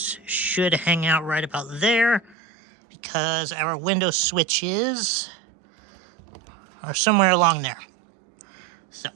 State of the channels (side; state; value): left; drops out; at 2.4 s